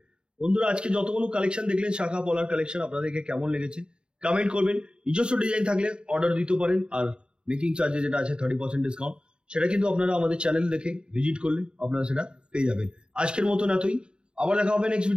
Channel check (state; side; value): late; left; 0.050 ms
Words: বন্ধুরা, আজকে যতগুলো কালেকশন দেখলেন শাখা পলার কালেকশন, আপনাদেরকে কেমন লেগেছে কমেন্ট করবেন। নিজস্ব ডিজাইন থাকলে অর্ডার দিতে পারেন, আর মেকিং চার্জে যেটা আছে 30% ডিসকাউন্ট, সেটা কিন্তু আপনারা আমাদের চ্যানেল দেখে ভিজিট করলে আপনারা সেটা পেয়ে যাবেন। আজকের মতন এতই, আবার দেখা হবে নেক্সট